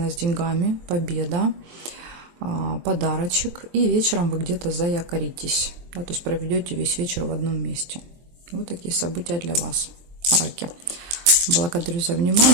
с деньгами, победа, подарочек. И вечером вы где-то заякоритесь. Да, то есть проведете весь вечер в одном месте. Вот такие события для вас, раки. Благодарю за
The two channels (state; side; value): late; left; 23 ms